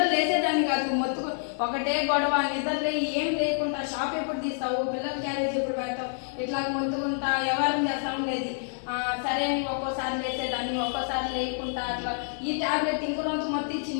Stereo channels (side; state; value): right; silent; digital silence